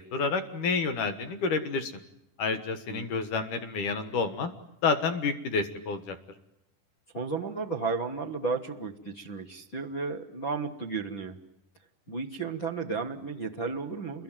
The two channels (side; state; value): right; late; 10 ms